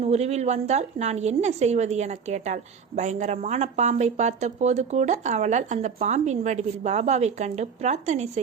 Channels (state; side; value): quieter; left; 6.4 dB